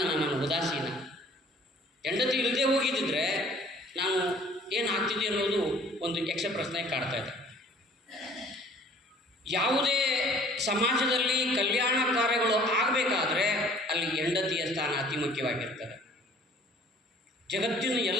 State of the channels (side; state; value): both; normal; correlation 0.53